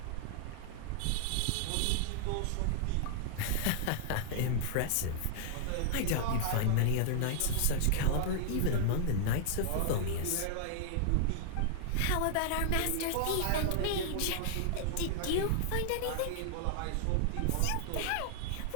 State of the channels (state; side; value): different; both; correlation -0.01